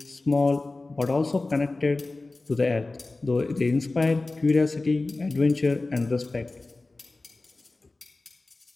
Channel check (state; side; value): quieter; right; 3.2 dB